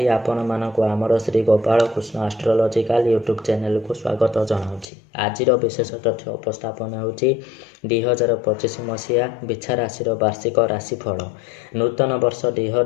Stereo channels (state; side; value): drops out; right; at 4.9 s